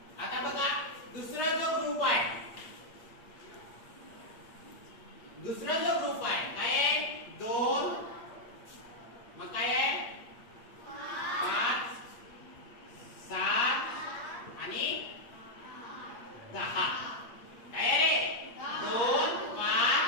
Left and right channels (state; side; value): late; right; 8.6 ms